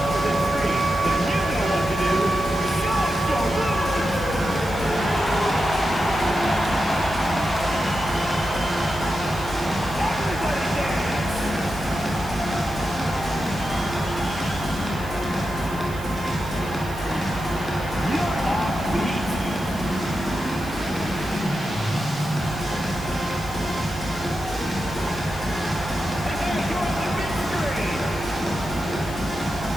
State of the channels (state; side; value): noise; right; hiss, 18 dB below the sound